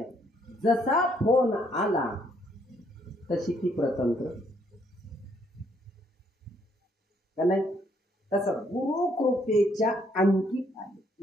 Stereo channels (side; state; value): both; normal; correlation 0.69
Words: जसा फोन आला तशी ती प्रतंत्र का नाही? तसं गुरुकृपेच्या अंकित आहे.